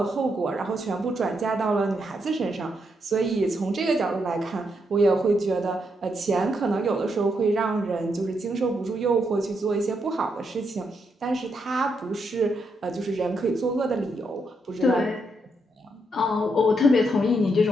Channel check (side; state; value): both; normal; correlation 0.79